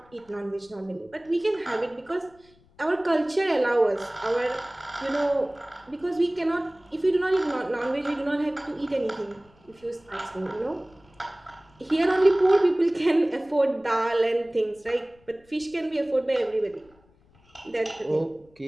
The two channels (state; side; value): noise; left; rumble, 30 dB below the sound